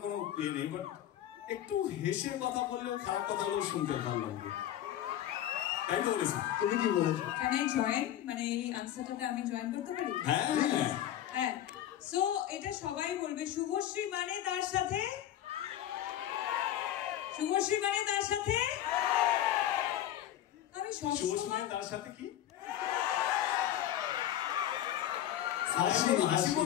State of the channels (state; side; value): quieter; right; 11.9 dB